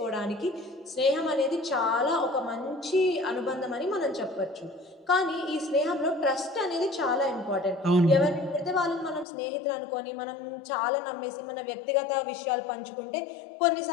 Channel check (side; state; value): right; drops out; at 9.2 s